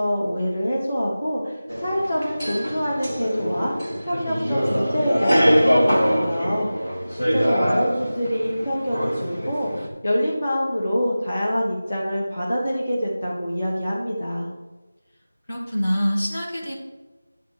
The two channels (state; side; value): inverted; both; correlation -0.96